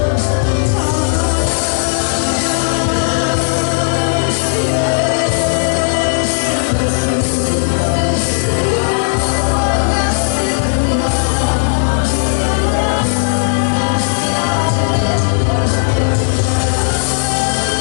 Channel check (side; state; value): right; silent; 68 dB below the other